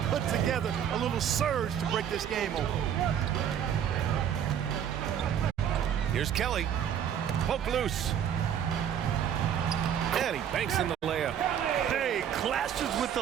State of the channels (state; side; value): quieter; left; 9.1 dB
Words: put together a little surge to break this game open. Here's Kelly. Poke loose. And he banks in the layup. Hey, clashes with the